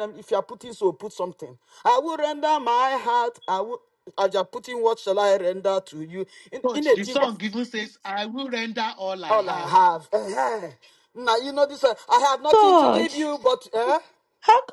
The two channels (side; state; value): both; identical; correlation 1.00